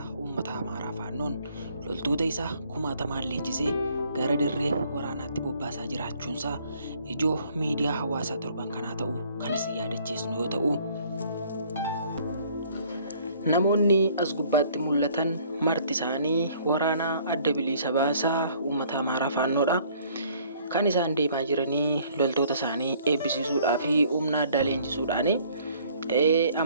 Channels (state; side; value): inverted; both; correlation -0.59